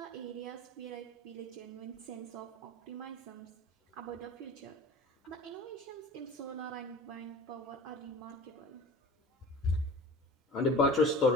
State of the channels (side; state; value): both; normal; correlation 0.40